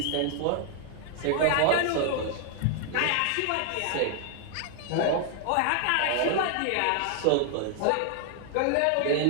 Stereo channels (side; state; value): both; different; correlation 0.00